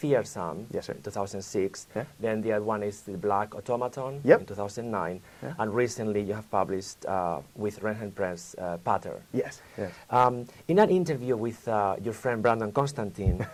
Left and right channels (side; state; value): both; identical; correlation 1.00